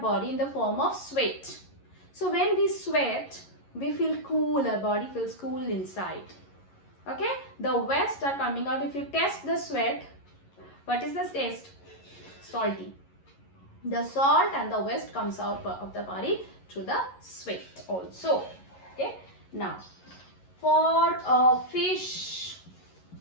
in the form of sweat. So when we sweat we feel cool, our body feels cool inside. Okay, the waste are coming out. If you test the sweat, what is the taste? Salty. The salt and the waste comes out of the body through the sweat also. Okay, now for fish,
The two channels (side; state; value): right; late; 11 ms